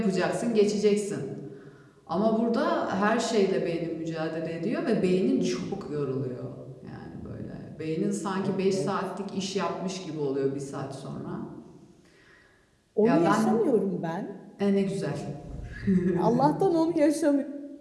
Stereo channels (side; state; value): both; identical; correlation 1.00